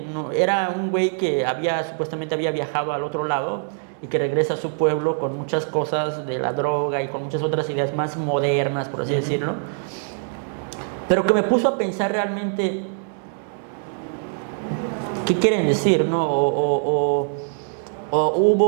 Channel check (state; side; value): silent; left; digital silence